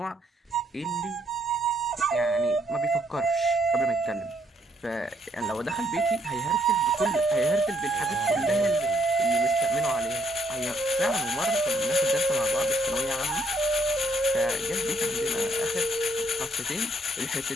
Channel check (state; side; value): normal; both; correlation 0.71